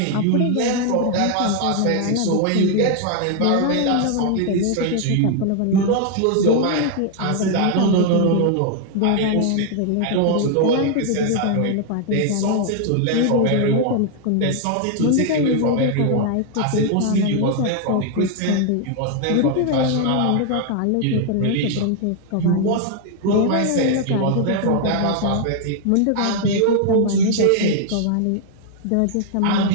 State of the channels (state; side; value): different; both; correlation 0.00